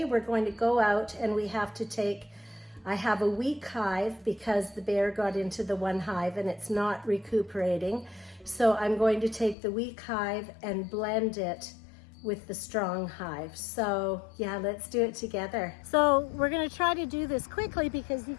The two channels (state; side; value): drops out; right; at 9.6 s